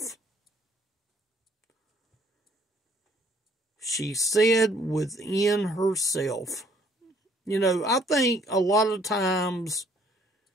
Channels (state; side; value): normal; both; correlation 0.62